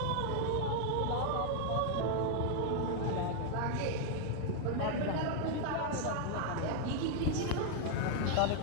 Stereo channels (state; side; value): different; both; correlation 0.00